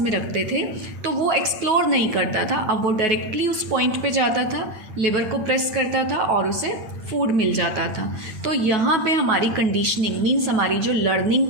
रखते थे तो वो एक्सप्लोर नहीं करता था. अब वो डायरेक्टली उस पॉइंट पे जाता था, लेवर को प्रेस करता था और उसे फूड मिल जाता था. तो यहाँ पे हमारी कंडीशनिंग मीन्स हमारी जो लर्निंग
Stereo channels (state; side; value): late; left; 9.4 ms